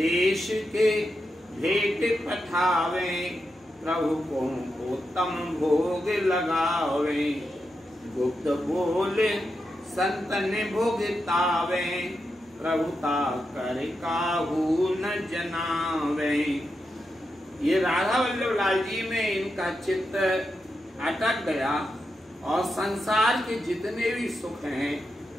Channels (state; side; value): normal; both; correlation 0.87